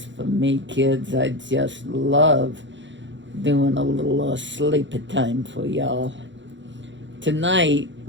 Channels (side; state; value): left; late; 0.54 ms